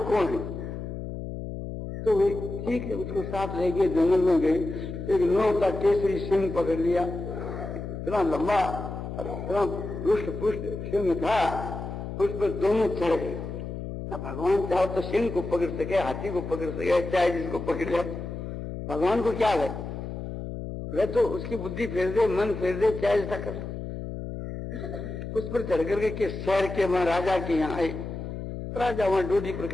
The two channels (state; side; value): noise; left; hum, 7 dB below the sound